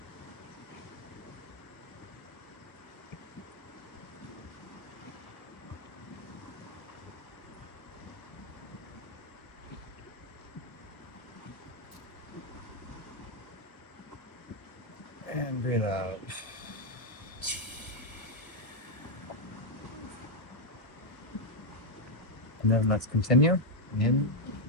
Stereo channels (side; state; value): right; late; 1.1 ms